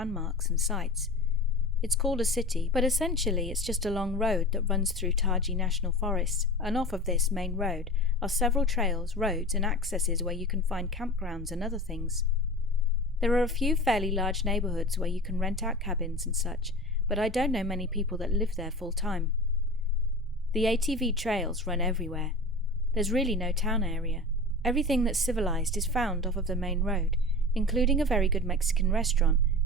and sites. It's called a city, but essentially it's just a long road that runs through Taji National Forest, and off of this main road are several trails, roads and accesses where you can find campgrounds and other things. There are a few fairly large neighbourhoods where you can rent out cabins and such, but I don't know many people that live there full time. The ATV trails run everywhere. There's really no town area. Everything that's civilized is found off of the main road, including a very good Mexican restaurant,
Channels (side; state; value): both; normal; correlation 0.33